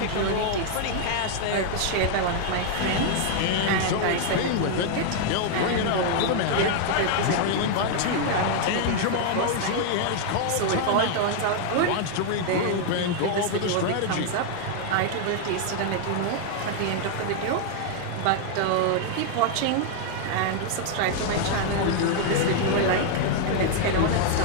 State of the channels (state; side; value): different; both; correlation 0.00